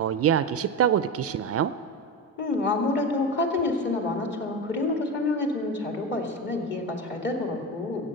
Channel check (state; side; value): normal; both; correlation 0.20